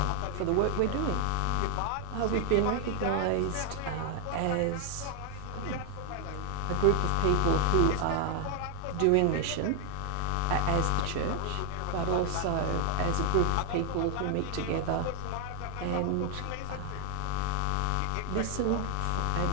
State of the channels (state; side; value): different; both; correlation 0.00